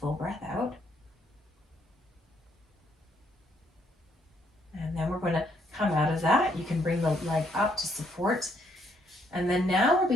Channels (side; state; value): both; normal; correlation 0.71